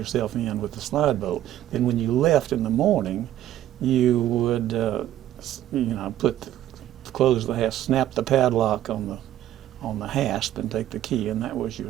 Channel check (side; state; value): left; quieter; 12.7 dB